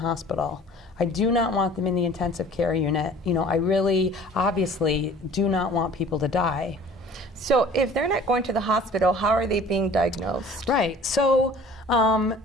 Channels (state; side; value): normal; both; correlation 0.48